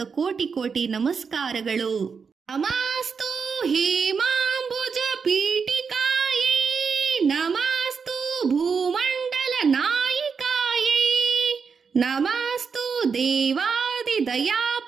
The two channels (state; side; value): quieter; left; 5.7 dB